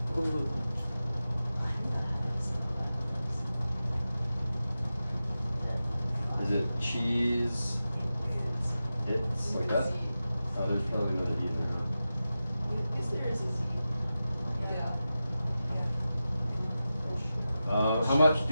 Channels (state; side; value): inverted; both; correlation -0.93